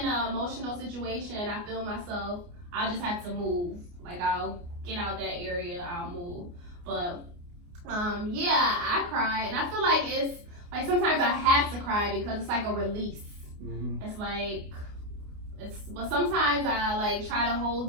an emotional situation, I feel myself, I'll just have to move. Like I'll get out that area, I'll move. But yeah, I cry, and I feel like it's like sometimes I have to cry because it's like a release. It's like but sometimes I like try to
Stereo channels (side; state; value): left; late; 29 ms